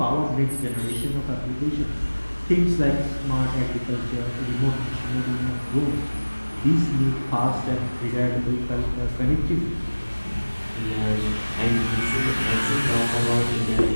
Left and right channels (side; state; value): both; inverted; correlation -1.00